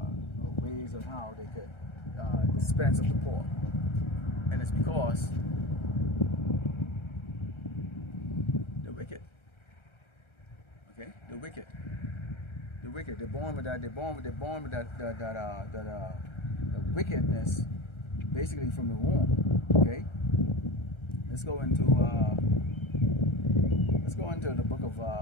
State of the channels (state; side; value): late; right; 1.3 ms